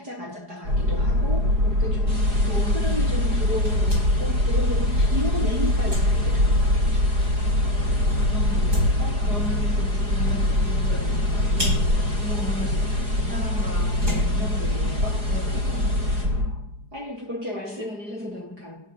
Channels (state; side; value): late; left; 4.8 ms